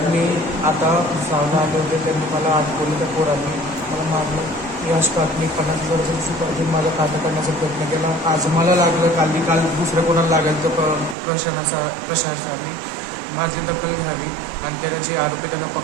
मी आता भुसावळला आले होते. त्यांनी मला अडकवलं. त्या पोरांनी मला मारलं. याच मी 50,000 सुपारी माझा खाता करण्याचा प्रयत्न केला. आज मला लागलं, काल दुसऱ्या कोणाला लागेल तर प्रशासनाने माझी दखल घ्यावी आणि त्याची आरोपी त्यांना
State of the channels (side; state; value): left; drops out; at 11.2 s